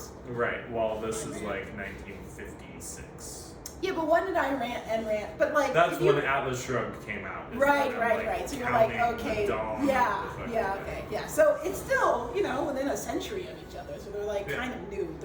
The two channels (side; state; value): both; identical; correlation 1.00